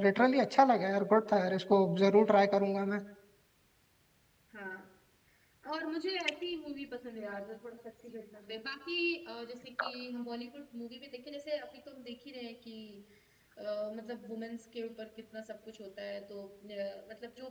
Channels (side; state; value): both; identical; correlation 1.00